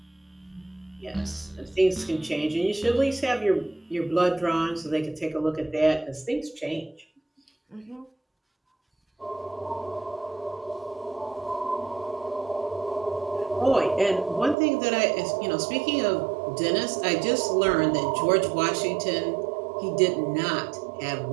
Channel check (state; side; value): drops out; left; at 14.6 s